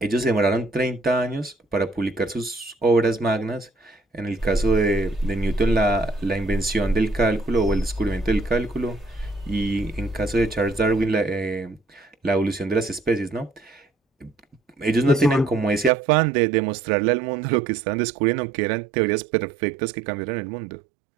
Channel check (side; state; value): left; drops out; at 15.9 s